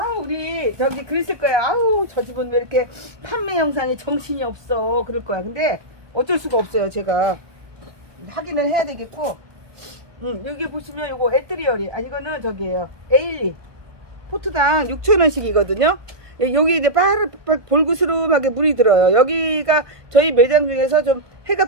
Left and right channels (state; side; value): late; left; 1.2 ms